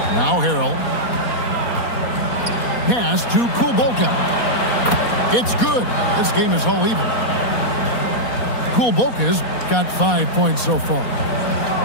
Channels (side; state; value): right; late; 4.2 ms